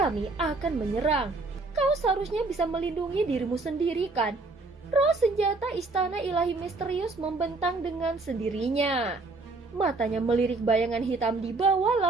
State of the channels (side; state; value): left; quieter; 3.5 dB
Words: akan menyerang. Kau seharusnya bisa melindungi dirimu sendiri kan? Roh senjata istana ilahi misterius membentang dengan sendirinya. Matanya melirik bayangan hitam di bawah